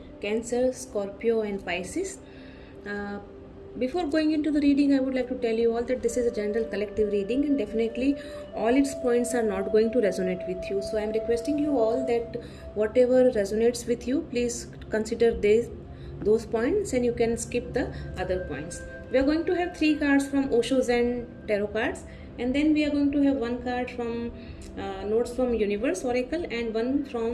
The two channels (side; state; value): both; identical; correlation 1.00